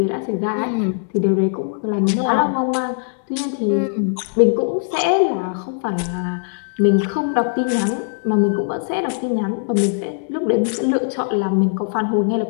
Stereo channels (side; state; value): right; silent; digital silence